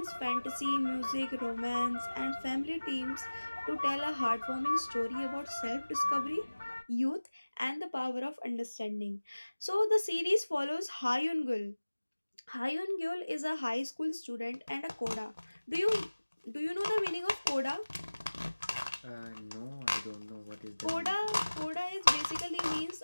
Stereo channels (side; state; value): both; inverted; correlation -1.00